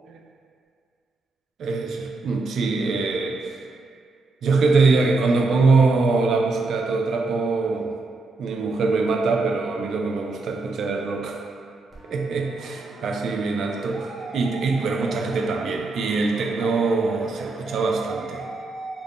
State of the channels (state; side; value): quieter; left; 3.5 dB